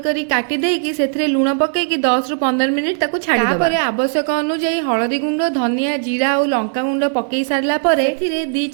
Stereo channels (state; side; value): silent; left; digital silence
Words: करी काटी देकी सेथरे लूण पकेकी 10 रु 15 मिनिट ताको छाड़ी दबा। तापरे आवश्यक अनुसार हळदी गुंड धनिया जीरा और लंका गुंड पकेई सारला परे एथिरे 2